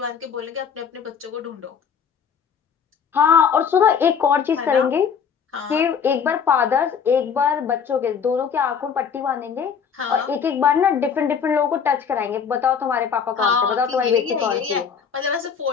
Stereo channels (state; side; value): quieter; right; 6.9 dB